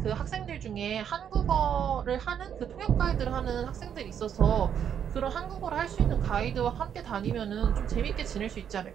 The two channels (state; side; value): quieter; left; 8.6 dB